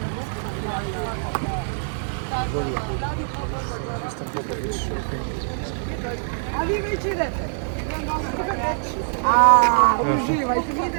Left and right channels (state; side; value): silent; left; 63 dB below the other